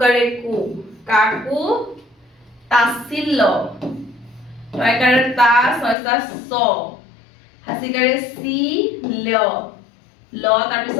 কু কাকো তাছিল্য কয়কাৰে তা ছয়সা স হাসিকাৰে সি ল ল তাৰ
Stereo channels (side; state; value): right; drops out; at 6.0 s